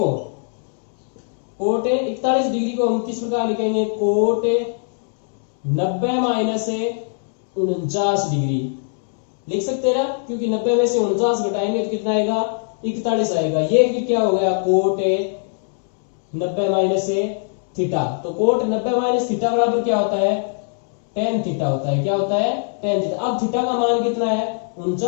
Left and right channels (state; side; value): silent; right; 60 dB below the other